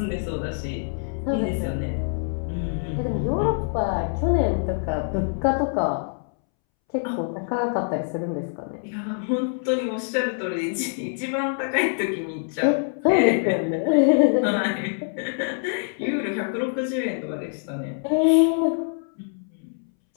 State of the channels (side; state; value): right; silent; 62 dB below the other